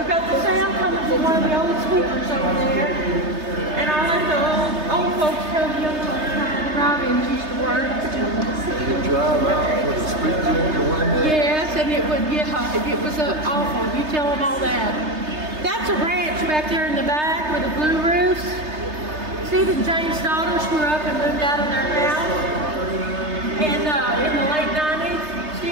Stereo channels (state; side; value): late; left; 3.3 ms